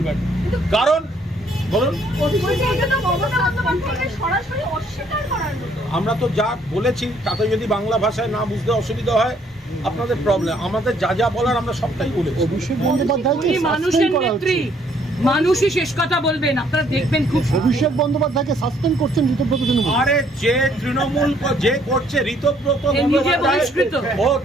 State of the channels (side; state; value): both; normal; correlation 0.65